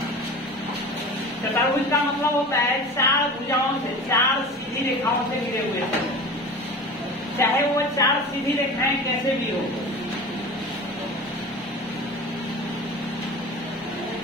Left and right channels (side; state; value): both; normal; correlation 0.35